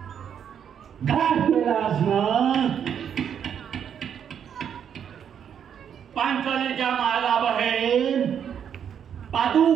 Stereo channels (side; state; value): left; quieter; 8.4 dB